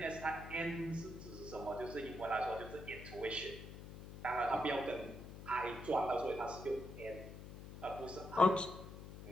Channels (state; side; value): noise; left; hum, 12 dB below the sound